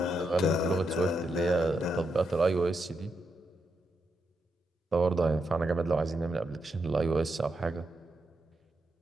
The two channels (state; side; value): normal; both; correlation 0.83